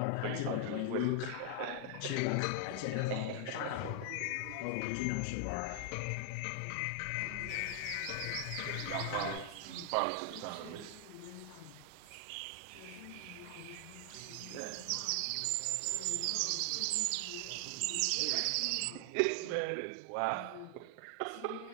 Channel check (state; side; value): different; both; correlation 0.00